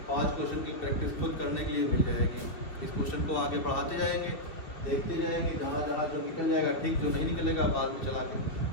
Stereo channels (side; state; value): right; late; 2.7 ms